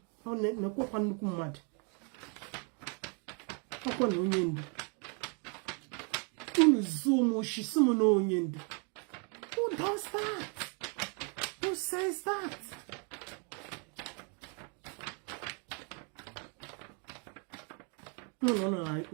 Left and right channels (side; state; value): left; quieter; 37.3 dB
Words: Ọ na-ekwu kwa nnukwu mmadụ. Ọkwa na onye ndu. Unu zoom oshisimu na onye ndu. Who does that? Who says that? No,